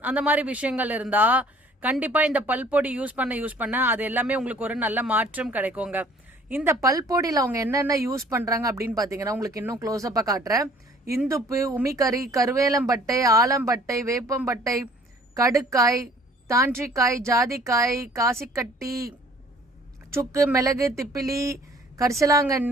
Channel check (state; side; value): normal; both; correlation 0.55